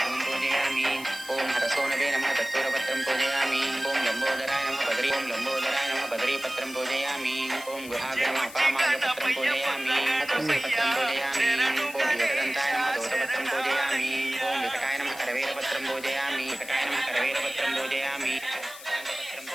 धूम पूजयामि। ओम हरसोनवे नमः दत्तूरपत्रं पूजयामि। ओम लंबोदराय नमः बद्री ओम लंबोदराय नमः बद्रीपत्रं पूजयामि। ओम गुहाग्र नमः अपामार्गपत्रं पूजयामि। तुलसीपत्रं पूजयामि। ओम योगदन्ताय नमः दोषपत्रं पूजयामि। ओम विकटाय नमः करवेरपत्रं पूजयामि। विकटाय नमः करवेरपत्रं पूजयामि। पत्रं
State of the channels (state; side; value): noise; left; hiss, 15 dB below the sound